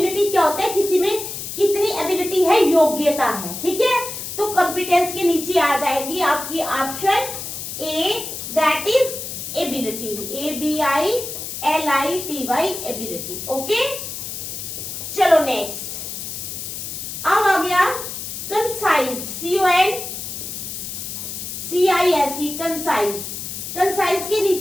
क्या होता है? किसी में कितनी एबिलिटी है, योग्यता है। ठीक है, तो कॉम्पिटेंस के नीचे आ जाएगी आपकी option A, that is ability. ABILITY, ability. Okay, चलो नेक्स्ट। अब आ गया कंसाइज, CONCISE, कंसाइज। कंसाइज के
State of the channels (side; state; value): left; noise; hiss, 7 dB below the sound